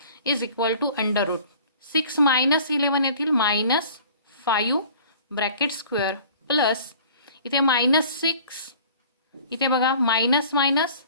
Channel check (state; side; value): inverted; both; correlation -0.48